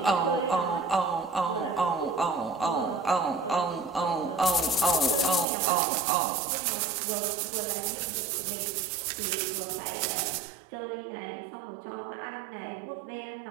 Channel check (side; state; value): left; drops out; at 5.5 s